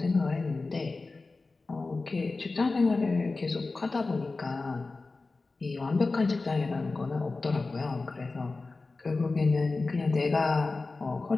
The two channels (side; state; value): right; quieter; 3.6 dB